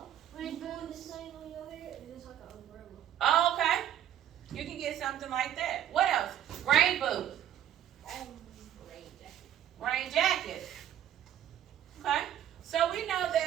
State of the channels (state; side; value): quieter; left; 10.7 dB